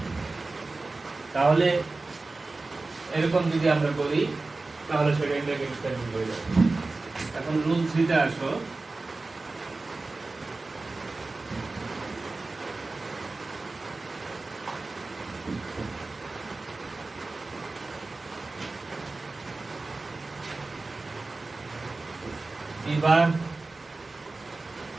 তাহলে এরকম যদি আমরা করি তাহলে সেটা ইন্টারভিউ সেন্টেন্স হয়ে যাবে। এখন রুল 3 তে আসো। বিভাগ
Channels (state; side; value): quieter; left; 3.4 dB